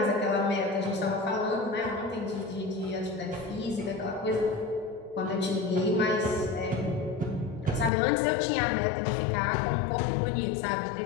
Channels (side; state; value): right; drops out; at 7.9 s